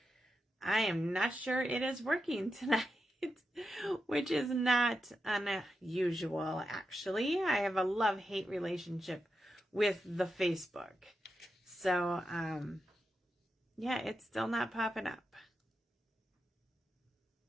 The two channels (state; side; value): normal; both; correlation 0.88